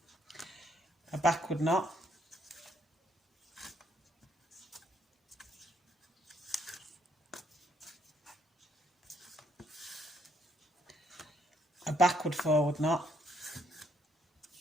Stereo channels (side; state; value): both; normal; correlation 0.70